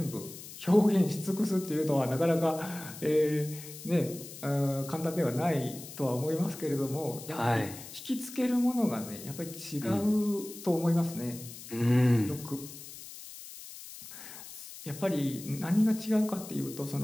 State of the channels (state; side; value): noise; left; hiss, 14 dB below the sound